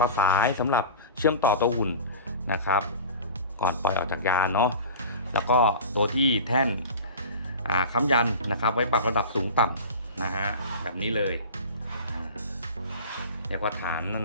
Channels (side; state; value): both; inverted; correlation -0.35